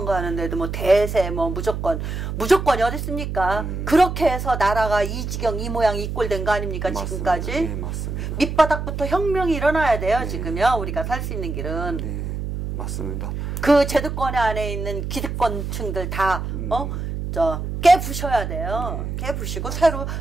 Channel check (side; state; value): right; noise; hum, 4 dB below the sound